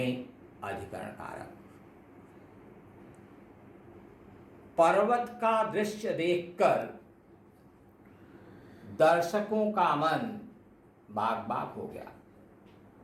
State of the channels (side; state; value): both; identical; correlation 1.00